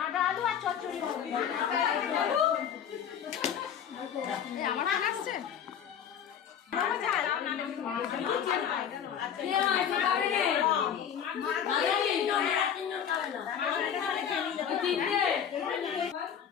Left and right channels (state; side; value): quieter; right; 8.5 dB